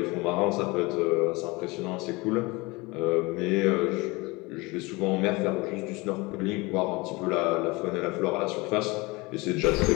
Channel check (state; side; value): quieter; right; 24.2 dB